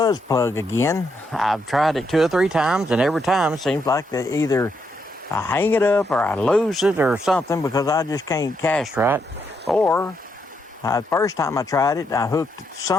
plug again. I've tried it 2 or 3 times, and every time it seems like that either I hang it up or I lose it or something because I just can't cast right. Or the first time I tried it, I hooked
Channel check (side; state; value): both; normal; correlation 0.78